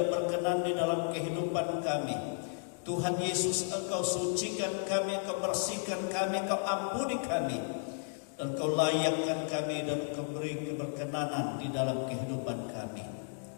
berkenan di dalam kehidupan kami, Tuhan Yesus, Engkau sucikan kami, Engkau bersihkan kami, Engkau ampuni kami, dan Engkau layakkan kami, dan Engkau beri keberkenanan di dalam kehidupan kami.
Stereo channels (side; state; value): right; silent; digital silence